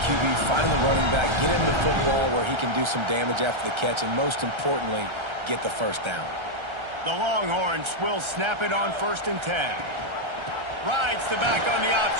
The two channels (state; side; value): late; left; 1.3 ms